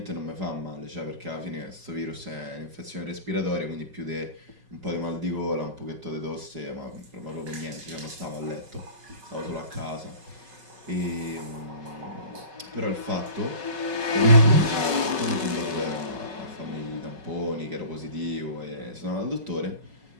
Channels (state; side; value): late; left; 5.3 ms